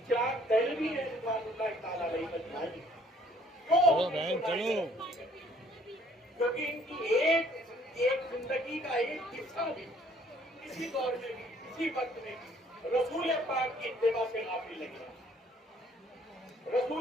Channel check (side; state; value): both; normal; correlation 0.61